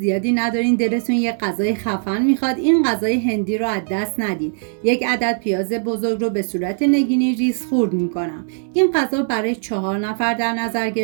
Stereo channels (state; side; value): silent; left; 65 dB below the other